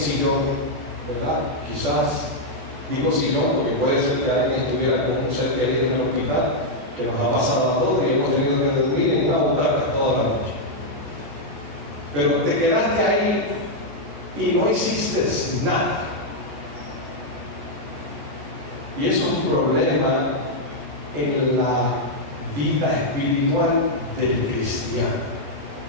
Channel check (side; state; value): left; late; 14 ms